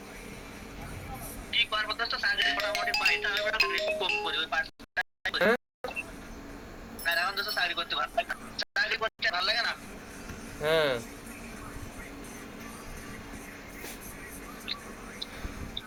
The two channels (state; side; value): identical; both; correlation 1.00